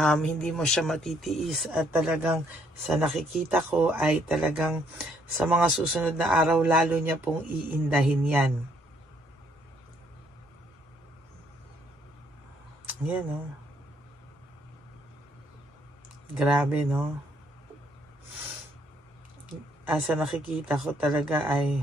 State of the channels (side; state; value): both; normal; correlation 0.68